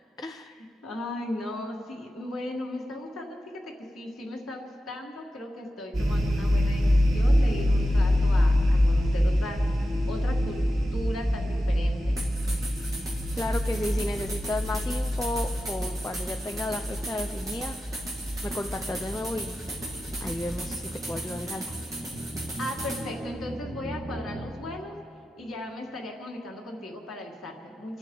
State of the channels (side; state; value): both; normal; correlation 0.92